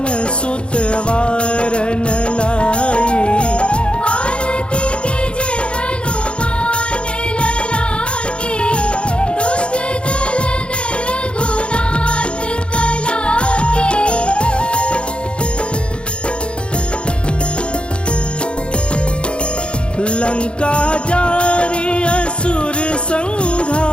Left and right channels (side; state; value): right; late; 0.056 ms